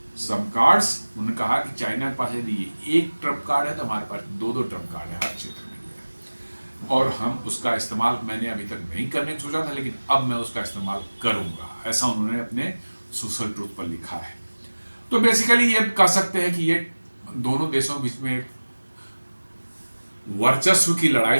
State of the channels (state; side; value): inverted; both; correlation -1.00